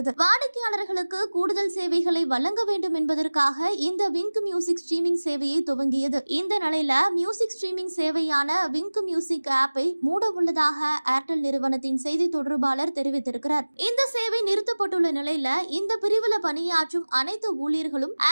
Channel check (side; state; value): both; inverted; correlation -1.00